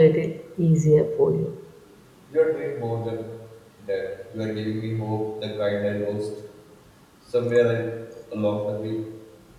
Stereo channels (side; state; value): both; identical; correlation 1.00